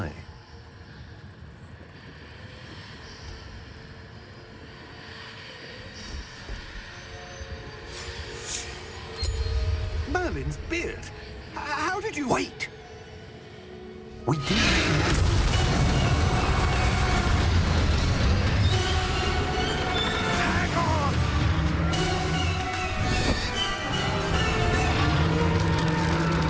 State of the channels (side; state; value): both; identical; correlation 1.00